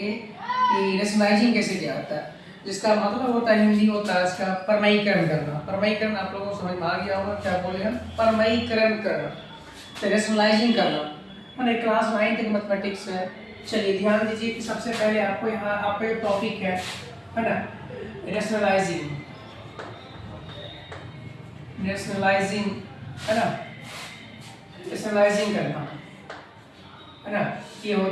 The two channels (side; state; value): both; identical; correlation 1.00